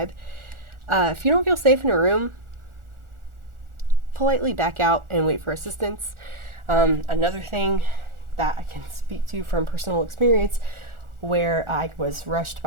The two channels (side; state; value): left; late; 1.4 ms